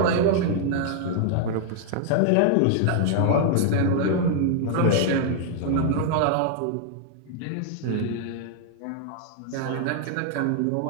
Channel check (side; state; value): both; different; correlation 0.00